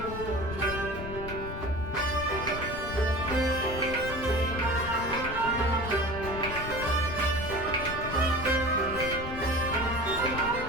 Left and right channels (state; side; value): noise; left; rumble, 8 dB below the sound